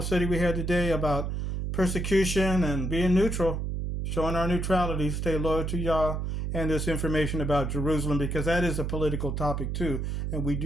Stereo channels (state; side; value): noise; right; hum, 2 dB below the sound